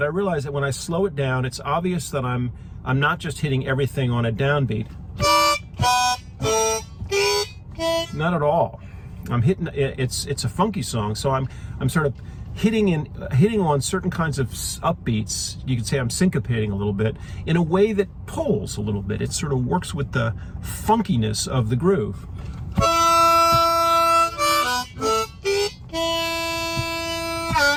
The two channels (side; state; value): both; identical; correlation 1.00